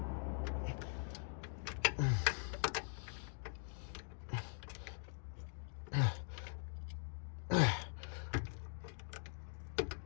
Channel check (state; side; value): silent; right; digital silence